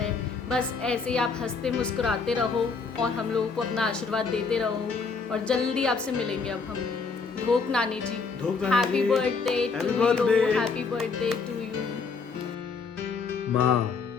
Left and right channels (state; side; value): quieter; right; 4.9 dB